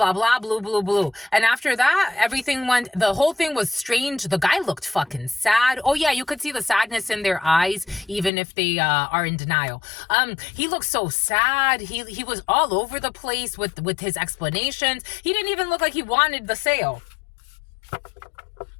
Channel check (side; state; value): right; drops out; at 8.3 s